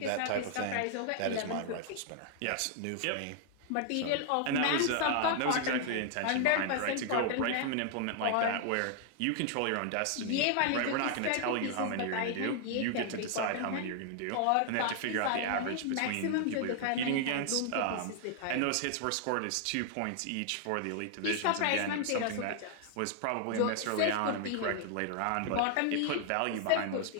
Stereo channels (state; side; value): different; both; correlation 0.00